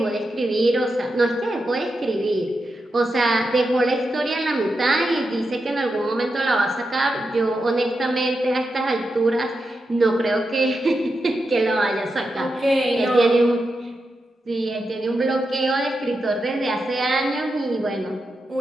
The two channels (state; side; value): normal; both; correlation 0.88